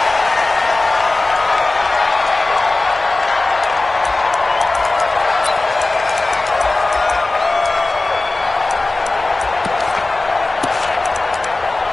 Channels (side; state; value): right; quieter; 3.1 dB